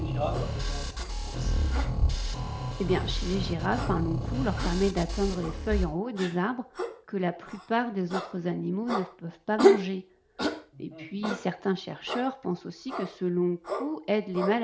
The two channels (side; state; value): both; identical; correlation 1.00